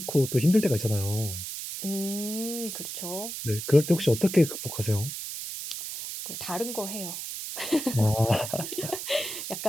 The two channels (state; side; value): noise; right; hiss, 7 dB below the sound